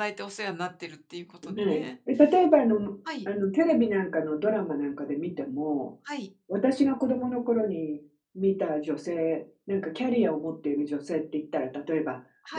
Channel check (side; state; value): both; identical; correlation 1.00